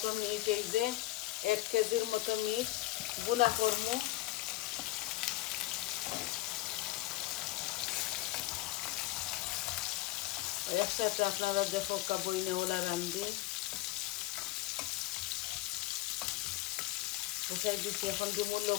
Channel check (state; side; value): quieter; right; 17.3 dB